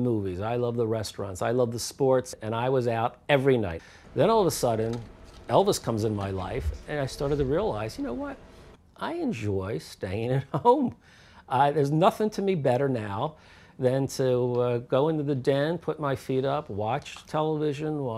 I love the restaurants. I love the sports. And I was out every night. Then all of a sudden, Elvis comes in my life, and I started to realize, you know what? I enjoy staying at home. There's nothing to me better now than to go into the den, put my feet up, watch television,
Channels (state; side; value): identical; both; correlation 1.00